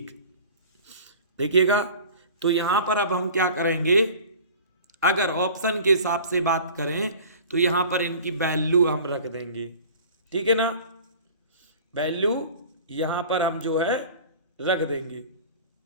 देखिएगा, तो यहां पर अब हम क्या करेंगे, अगर ऑप्शन के हिसाब से बात करें तो यहां पर इनकी वैल्यू हम रख देंगे, ठीक है ना, वैल्यू यहां पर हम जो है रख देंगे।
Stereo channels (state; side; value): inverted; both; correlation -0.42